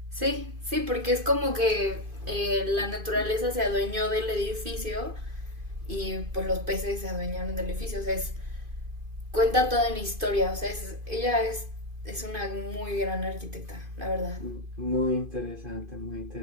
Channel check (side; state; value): left; late; 2.5 ms